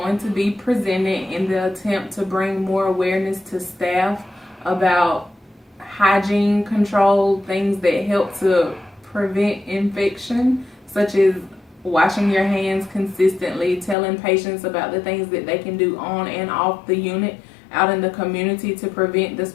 to be presented in the attempt to bring more awareness to staff about hygiene control, things that help to prevent infection, such as washing your hands consistently, telling patients about the things that they can do on and off the unit out in the community to prevent the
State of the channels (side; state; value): right; drops out; at 14.0 s